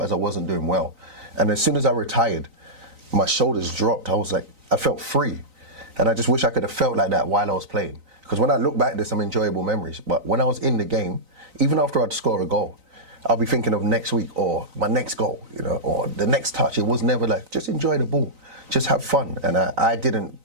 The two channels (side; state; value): left; late; 3.9 ms